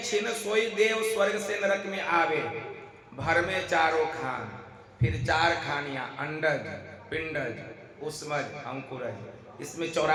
छिन सोई देव स्वर्ग से नरक में आवे, भर में चारों खान, फिर चार खानियां, अंडज, पिंडज, उष्मज, अंकुरज। इसमें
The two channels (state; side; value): identical; both; correlation 1.00